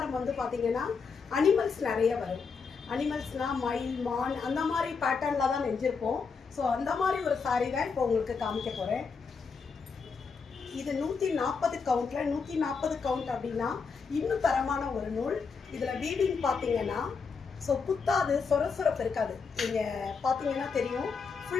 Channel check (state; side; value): quieter; right; 5.3 dB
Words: வந்து பார்த்தீங்கன்னா அனிமல்ஸ் நிறைய வரும். அனிமல்ஸ்னால் மயில், மான் அந்த மாதிரி பேட்டர்னில் தான் நெஞ்சிருப்போம். ஸோ அந்த மாதிரி ஒரு சாரீ தான் இப்போ உங்களுக்கு காமிக்க போகிறேன். இது 140 கவுண்ட்ல 140 கவுண்ட் அப்படின்னா இன்னும் தரமான ஒரு நூல். இதில் வீவிங் பார்த்தீங்கன்னா ஸோ குத்தாது, சொரசொரப்பு இருக்காது. நீங்கள் பார்த்தீங்கன்னா தெரியும்,